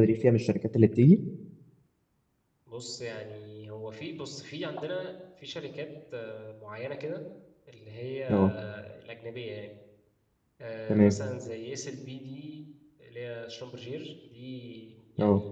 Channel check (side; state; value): both; identical; correlation 1.00